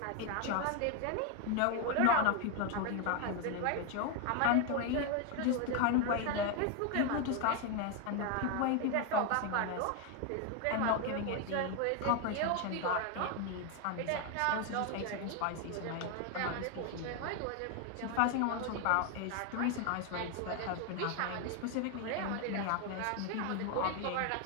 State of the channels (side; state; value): both; different; correlation 0.01